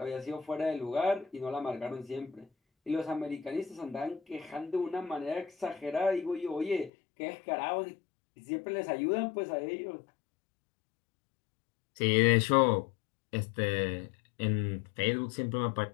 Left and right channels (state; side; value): drops out; right; at 6.9 s